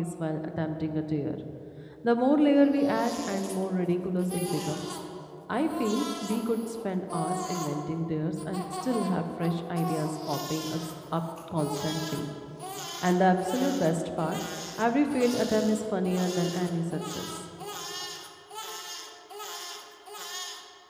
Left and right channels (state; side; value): identical; both; correlation 1.00